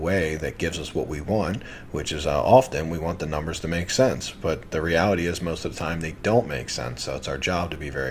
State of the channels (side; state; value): both; identical; correlation 1.00